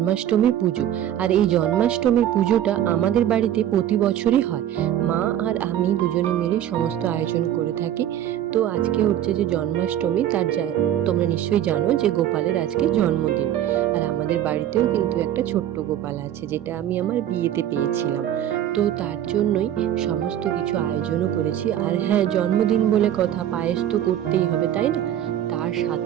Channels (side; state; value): left; quieter; 11.2 dB